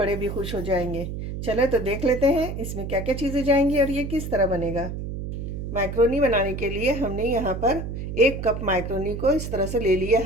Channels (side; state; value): right; noise; hum, 6 dB below the sound